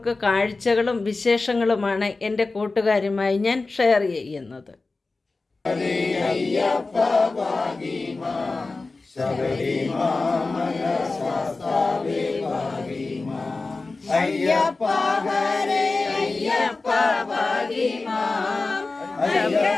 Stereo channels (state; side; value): quieter; right; 3.6 dB